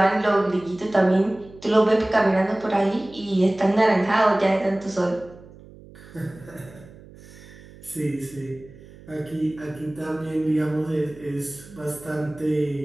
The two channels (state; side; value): noise; right; hum, 21 dB below the sound